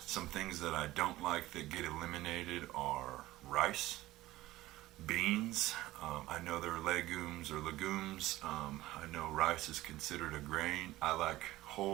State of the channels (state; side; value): quieter; left; 16.8 dB